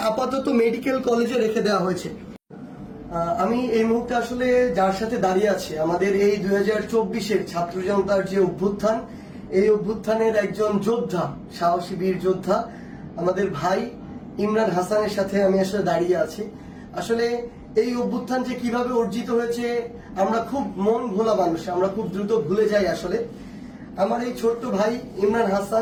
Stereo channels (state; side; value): identical; both; correlation 1.00